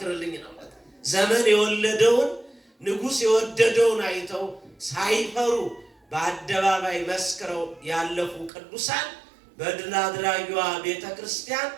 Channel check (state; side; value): drops out; left; at 8.5 s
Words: ነው። ዘመን የወለደውን ንጉሥ የወደደውን አይተው ሳይፈሩ በአደባባይ መስክረው ያለፉ ቅዱሳን በድል አድራጊዋ ቤተ ክርስቲያን